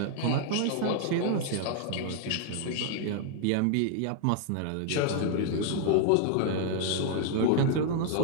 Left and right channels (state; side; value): different; both; correlation 0.00